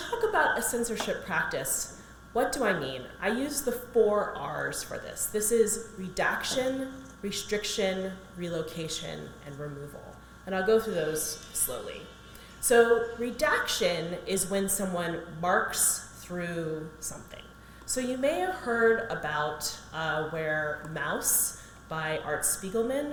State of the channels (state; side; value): identical; both; correlation 1.00